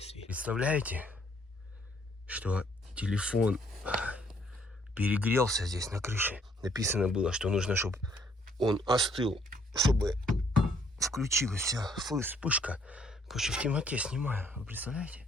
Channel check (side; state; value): both; normal; correlation 0.65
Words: Представляете, что телефон перегрелся здесь на крыше. Написано было, что нужно, чтобы он остыл, чтобы включилась вся вспышка. Короче, в темноте снимаю. Вы представляете?